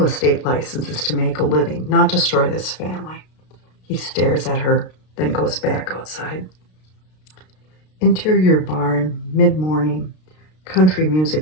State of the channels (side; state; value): right; late; 32 ms